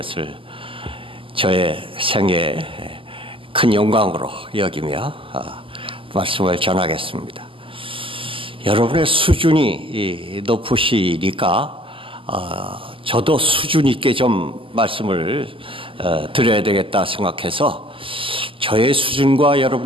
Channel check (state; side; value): late; left; 0.25 ms